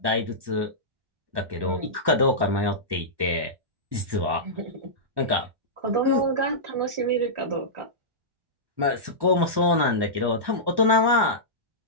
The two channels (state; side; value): late; left; 1.1 ms